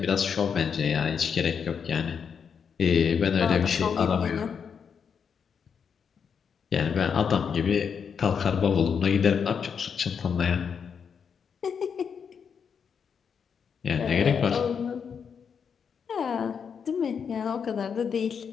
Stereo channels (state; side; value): quieter; right; 6.8 dB